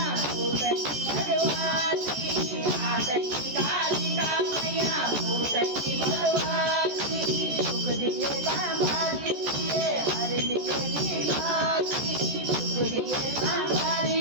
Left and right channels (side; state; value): left; late; 14 ms